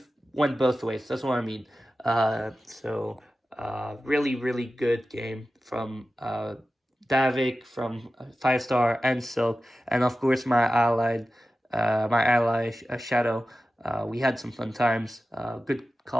went both ways. That's what I mean. Really good game from Davvyk, from 5-star and Silk, and of course my ally Shadow. We had some fun times, good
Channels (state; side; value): normal; both; correlation 0.94